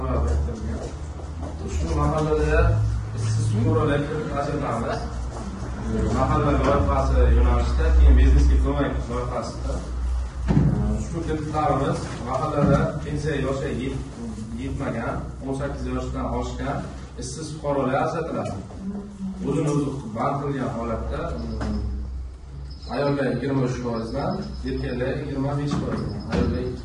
biriktirilgan. Shu mahallada ishsiz fuqarolarga ajratamiz. Mahalla loyihasi yo'nalishida, keyin biznesga ko'mak loyihasida shu kreditlarimiz mahallada pensiya yoshi yetmagan, 18 yoshdan oshgan ishsiz fuqarolar ajratiladi. O'zini o'zi band qilgan holatda ayollar 23%dan, erkaklar 25%dan, ayollar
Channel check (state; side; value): identical; both; correlation 1.00